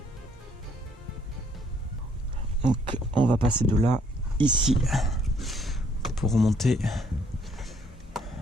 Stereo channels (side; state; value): both; normal; correlation 0.66